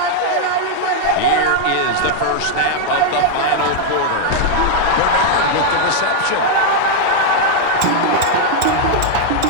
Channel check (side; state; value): both; different; correlation 0.00